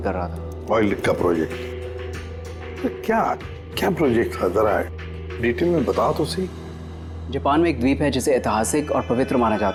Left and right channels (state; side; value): identical; both; correlation 1.00